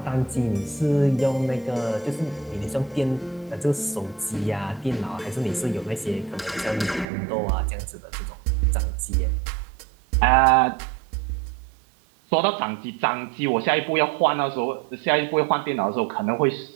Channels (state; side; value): drops out; left; at 7.1 s